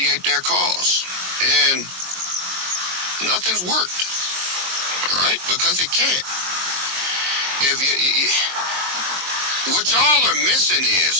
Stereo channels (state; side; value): late; left; 22 ms